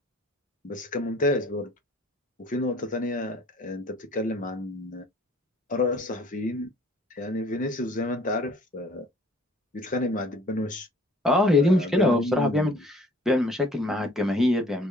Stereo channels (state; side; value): normal; both; correlation 0.54